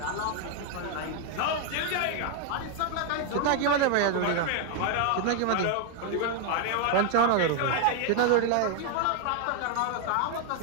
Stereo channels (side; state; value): both; different; correlation 0.00